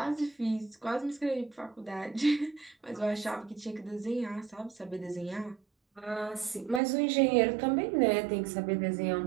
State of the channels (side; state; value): left; drops out; at 6.8 s